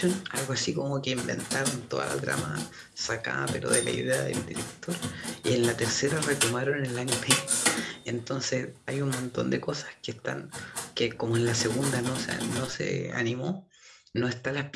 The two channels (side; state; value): both; identical; correlation 1.00